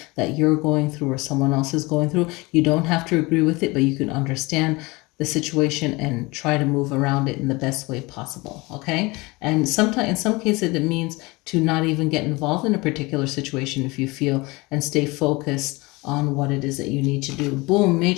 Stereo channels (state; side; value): quieter; right; 23.9 dB